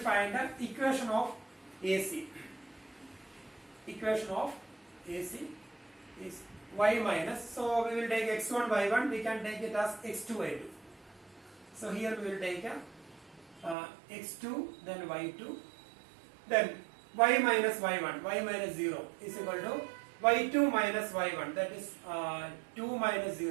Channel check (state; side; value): drops out; left; at 13.8 s